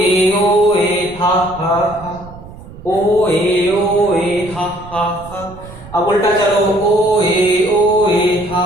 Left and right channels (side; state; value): right; noise; rumble, 17 dB below the sound